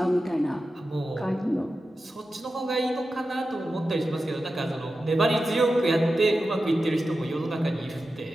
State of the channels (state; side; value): normal; both; correlation 0.92